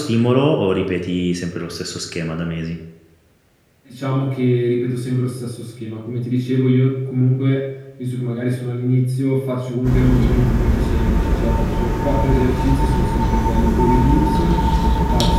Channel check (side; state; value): both; identical; correlation 1.00